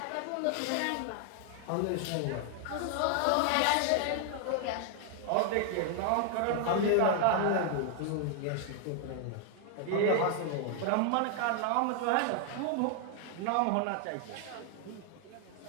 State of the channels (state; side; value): different; both; correlation 0.00